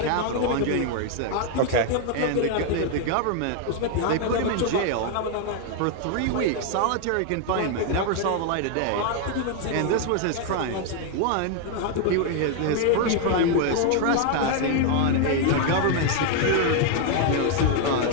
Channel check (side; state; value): both; different; correlation 0.00